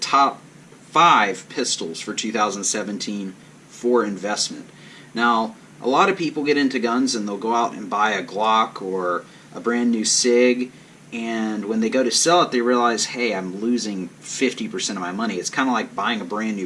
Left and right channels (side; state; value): both; identical; correlation 1.00